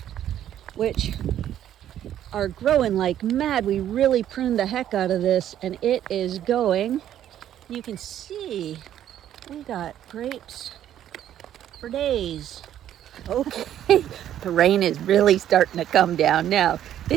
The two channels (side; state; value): left; quieter; 11.1 dB